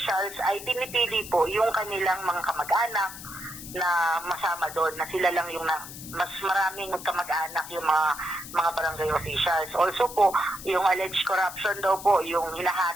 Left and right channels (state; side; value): noise; left; hiss, 13 dB below the sound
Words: ay pinipili po yung kanilang mga kamag-anak na masama doon, na sila lang yung mas maraming kamag-anak yung mga barangay officials. Also po, yung alleged corruption daw po, yung